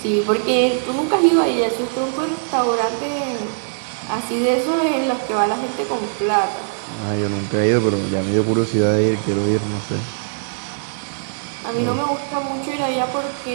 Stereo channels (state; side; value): silent; left; 65 dB below the other